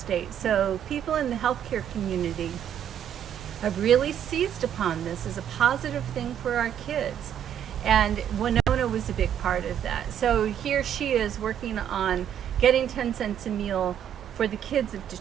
So people in the healthcare community have really seized upon this as a positive thing for our kids. And Winona was a big part of that. So here she is working on getting 10 cents a meal for the kids of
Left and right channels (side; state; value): left; quieter; 9.6 dB